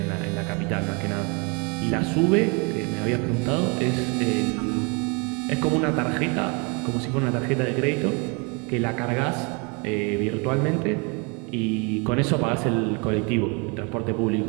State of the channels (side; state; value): left; quieter; 31.9 dB